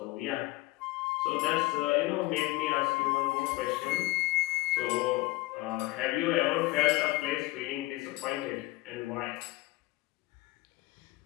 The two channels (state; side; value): quieter; right; 20.5 dB